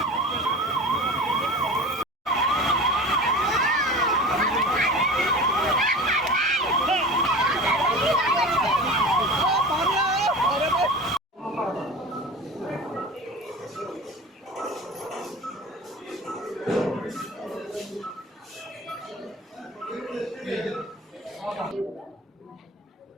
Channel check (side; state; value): both; normal; correlation 0.35